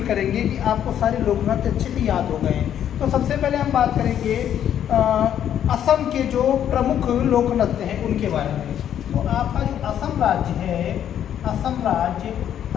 करेंगे कि आपको सारे लोक नृत्य अच्छे से याद हो गए हैं। तो सबसे पहले हम बात करेंगे असम के जो प्रमुख लोक नृत्य हैं उनके बारे में। तो आपका जो असम राज्य है, असम राज्य,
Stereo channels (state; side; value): quieter; right; 10.0 dB